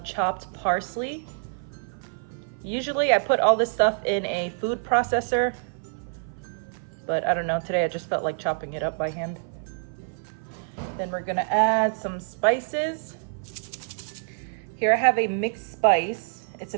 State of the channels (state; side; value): silent; left; 55 dB below the other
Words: chopped parsley. Usually I put all this stuff in a food processor, but I don't know, today I just felt like chopping it up by hand. Then we're gonna add some spices. Here I have a mixed spice. It's a